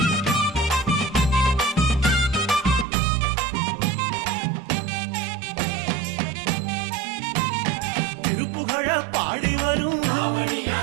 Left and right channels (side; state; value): left; drops out; at 2.9 s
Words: திருப்புகழ பாடி வரும்